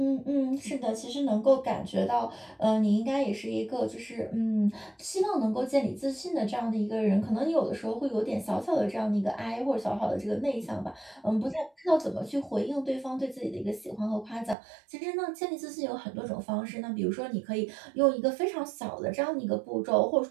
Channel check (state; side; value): drops out; left; at 14.6 s